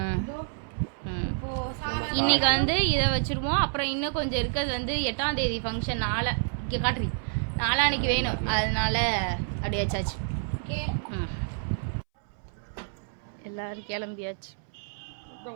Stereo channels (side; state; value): left; silent; 59 dB below the other